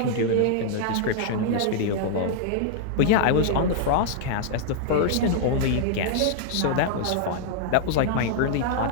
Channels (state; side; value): different; both; correlation -0.01